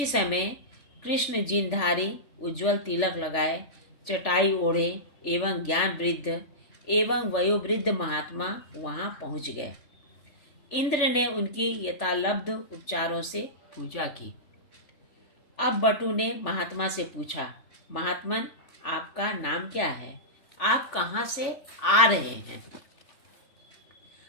समय कृष्ण जिनधारी, उज्ज्वल तिलक लगाए, चटाई ओढ़े एवं ज्ञान वृद्ध एवं वयोवृद्ध महात्मा वहां पहुंच गए। इंद्र ने उनकी यथालब्ध उपचारों से पूजा की। अब बटु ने महात्मा से पूछा, महात्मन, आपका नाम क्या है? आप कहाँ से आ रहे हैं?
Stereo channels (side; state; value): right; late; 3.4 ms